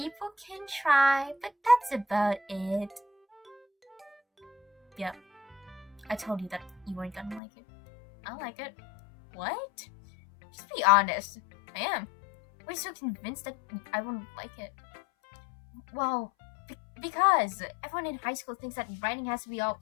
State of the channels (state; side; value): drops out; right; at 7.4 s